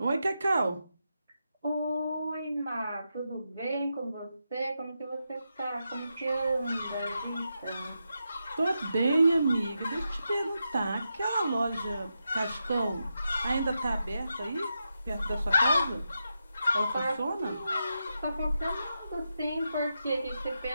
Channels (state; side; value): inverted; both; correlation -0.86